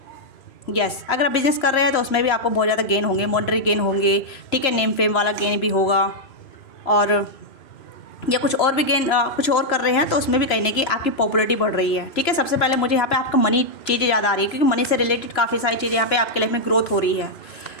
यस। अगर आप बिज़नेस कर रहे हैं तो उसमें भी आपको बहुत ज़्यादा गेन होंगे, मॉनेटरी गेन होंगे। ठीक है, नेम फेम वाला गेन भी होगा, और या कुछ और भी गेन कुछ और कर रहे हैं तो उसमें भी कहने की आपकी पॉपुलरिटी बढ़ रही है। ठीक है, सबसे पहले मुझे यहाँ पे आपका मनी चीज़ें ज़्यादा आ रही है, क्योंकि मनी से रिलेटेड काफ़ी सारी चीज़ें यहाँ पे आपके लाइफ में ग्रोथ हो रही है।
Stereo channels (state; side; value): late; right; 3.0 ms